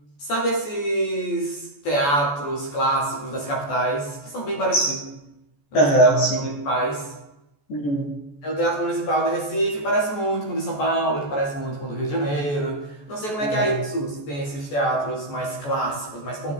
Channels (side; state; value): right; late; 14 ms